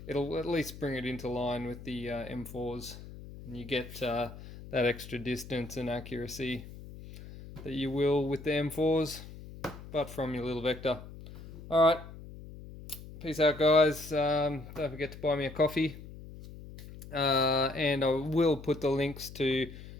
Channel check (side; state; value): left; noise; hum, 14 dB below the sound